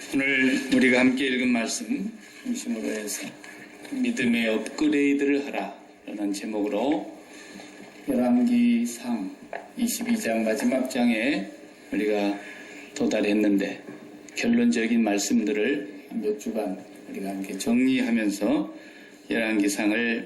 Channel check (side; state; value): both; identical; correlation 1.00